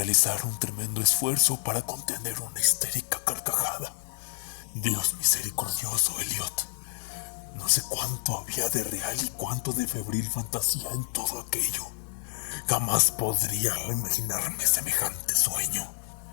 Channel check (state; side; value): silent; right; digital silence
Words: un tremendo esfuerzo para contener una histérica carcajada. Dios misericordioso, Elliot. No sé cuánto había de real y cuánto de febril fantasía en todo aquello. Jamás podría imaginarme semejante sueño.